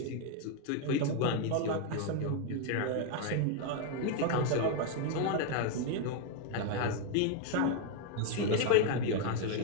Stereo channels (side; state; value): both; different; correlation 0.01